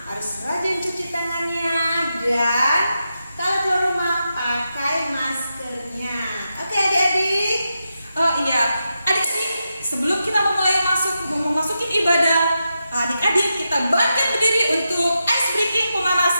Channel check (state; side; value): inverted; both; correlation -0.87